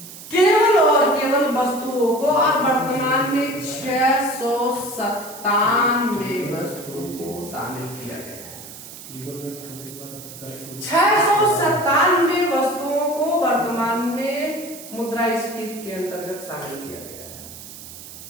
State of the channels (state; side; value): noise; right; hiss, 15 dB below the sound